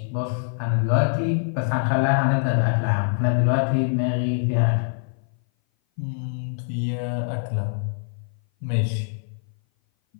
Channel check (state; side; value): silent; right; 58 dB below the other